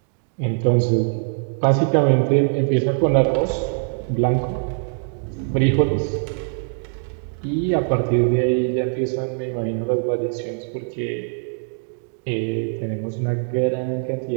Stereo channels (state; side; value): silent; left; digital silence